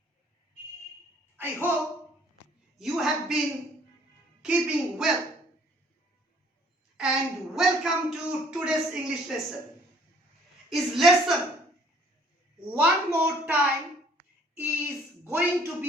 I hope you have been keeping well. And welcome to today's English lesson. Is lesson one more time is going to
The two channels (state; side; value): normal; both; correlation 0.58